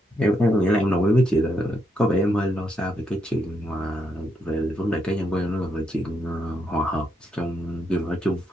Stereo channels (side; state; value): both; normal; correlation 0.79